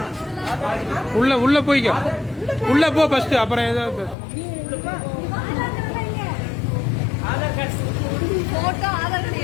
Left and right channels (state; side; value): drops out; right; at 4.2 s